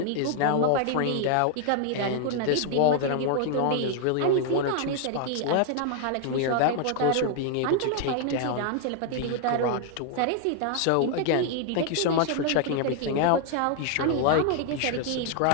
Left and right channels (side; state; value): both; different; correlation 0.00